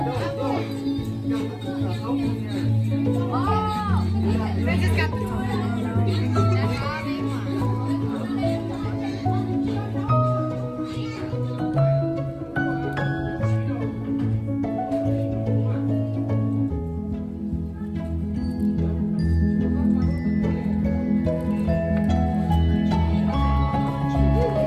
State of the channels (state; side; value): identical; both; correlation 1.00